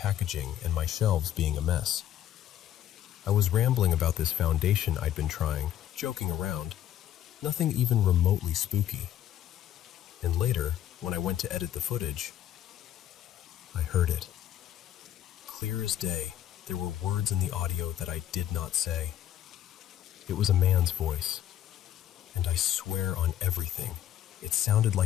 and my shelves being a mess. I was rambling about this foundation I'd been trying, joking around. Nothing even remotely spooky. And later, when I went to edit the footage, I heard it. Clear as day, there were words in the audio that I did not say. It was a man's voice, and I swear on everything, it sounded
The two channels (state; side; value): quieter; right; 11.5 dB